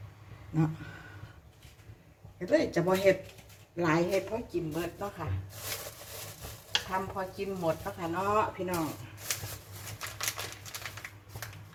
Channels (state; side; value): identical; both; correlation 1.00